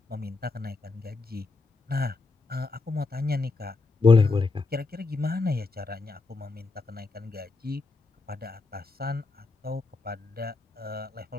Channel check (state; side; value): quieter; right; 3.8 dB